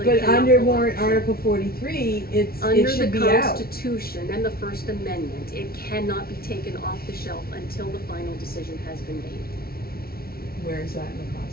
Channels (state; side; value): late; right; 0.44 ms